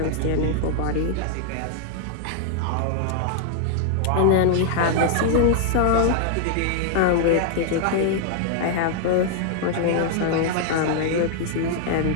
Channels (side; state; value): both; different; correlation 0.00